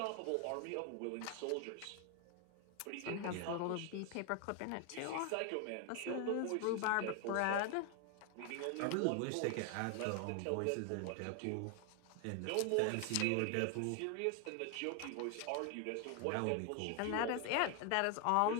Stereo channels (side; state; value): both; different; correlation 0.01